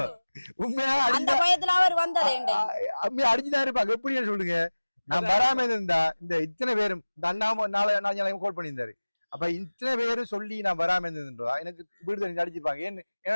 உண்மையா அடிச்சுதான் இருப்பாங்க. எப்படின்னு சொல்லுங்க. நான் வராம இருந்தா இந்த இத்தனை பேரும் இந்த அண்ணா நாளை கால் பண்ணியிருந்தாரு. அப்ப இத்தனை பேரும் சொல்லி நான் வராம இருந்திருந்தா எனக்கு வீடு அடிச்சிருப்பாங்க. என்ன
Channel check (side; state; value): both; inverted; correlation -1.00